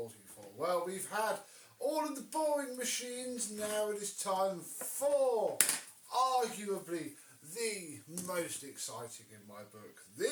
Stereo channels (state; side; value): identical; both; correlation 1.00